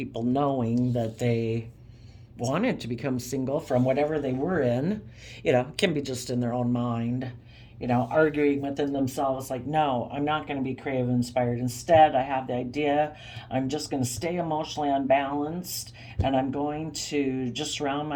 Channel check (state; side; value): identical; both; correlation 1.00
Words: knowing that they wanted to become single from whatever they were in. It can be just in their own mind, arguing within themselves like, no, I'm not going to be creative inspired. Instead, I have the idea I'm just going to stay emotionally unbalanced and I'm going to just surround